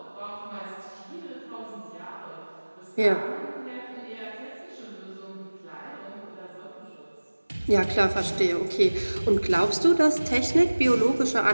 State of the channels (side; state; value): both; inverted; correlation -1.00